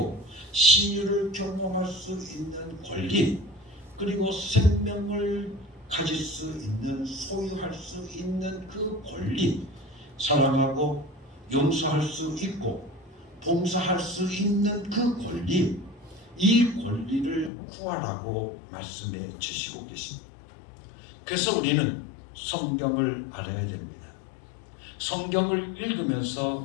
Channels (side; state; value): right; drops out; at 17.5 s